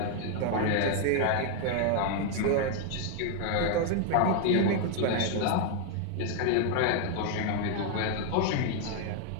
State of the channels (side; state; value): both; different; correlation 0.00